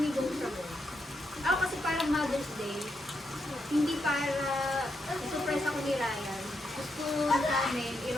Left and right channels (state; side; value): normal; both; correlation 0.82